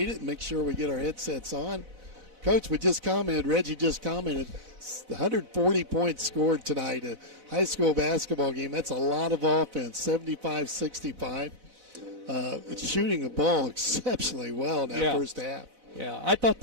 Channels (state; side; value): late; left; 4.0 ms